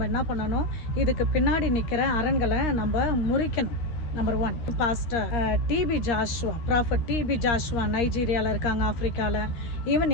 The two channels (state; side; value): late; right; 13 ms